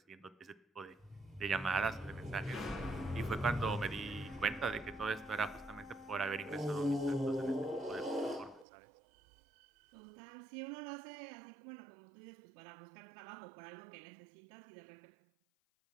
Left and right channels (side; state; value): left; drops out; at 8.7 s